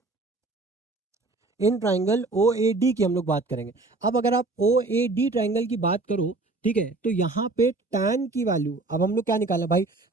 इन ट्राइंगल ओ ए डी की हम लोग बात करेंगे। अब अगर आप ओ ए डी ट्राइंगल की बात करो, ठीक है, तो यहाँ पे tan की वैल्यू, अब हम लोग क्या निकालना है भाई,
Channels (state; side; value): quieter; left; 3.3 dB